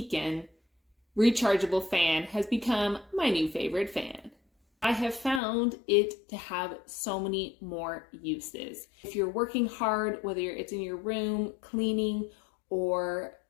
rechargeable fan has become my new favorite fan. I have found it to have so many more uses. If you're working hard, whether it's in your room, cleaning, or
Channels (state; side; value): drops out; right; at 5.4 s